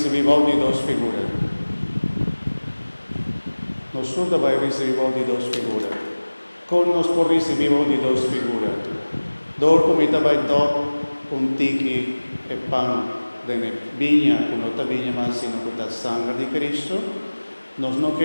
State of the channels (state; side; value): inverted; both; correlation -1.00